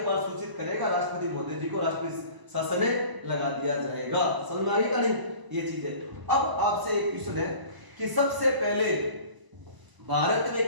सूचित करेगा राष्ट्रपति महोदय जी को, राष्ट्रीय शासन लगा दिया जाएगा। समझ में आ गई का नहीं, ये चीज है। अब आपसे एक क्वेश्चन है कि सबसे पहले भारत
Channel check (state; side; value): late; left; 1.0 ms